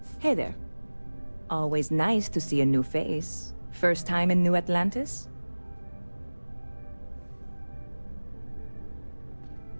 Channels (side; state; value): both; inverted; correlation -1.00